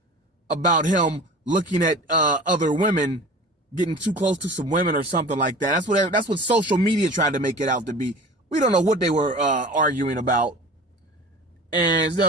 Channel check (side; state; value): both; normal; correlation 0.39